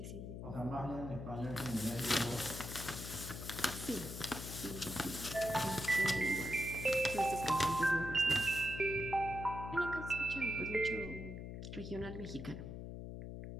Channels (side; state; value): left; noise; hum, 8 dB below the sound